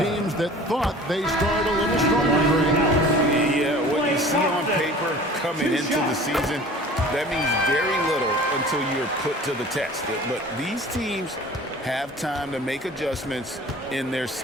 that thought they started a little stronger. Yeah, what you see on paper coming into the season, that means very little until you're put to the test. But these teams have time to make adjustments in their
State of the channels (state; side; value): normal; both; correlation 0.44